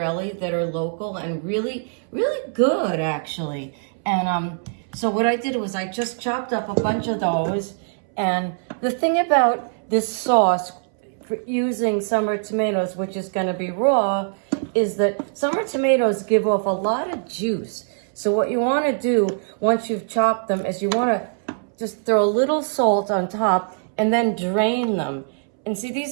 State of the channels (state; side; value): silent; left; 64 dB below the other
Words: that are local and really, really good, actually. And so what I did was I just chopped up a bunch of those. And the thing about this sauce for using summer tomatoes, which is going to be raw, is that summer tomatoes give off a lot of juice. So what you want to do once you've chopped them is you want to just throw a little salt on top and then drain them. And see,